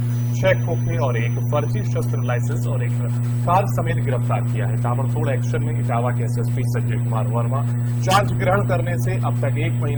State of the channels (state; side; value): identical; both; correlation 1.00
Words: 6 खोखे और एक फर्जी शस्त्र लाइसेंस और एक कार समेत गिरफ्तार किया है। ताबड़तोड़ एक्शन में इटावा के एसएसपी संजय कुमार वर्मा चार्ज ग्रहण करने से अब तक 1